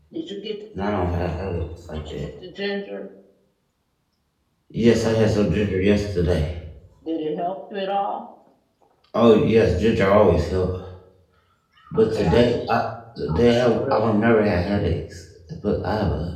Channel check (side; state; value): both; identical; correlation 1.00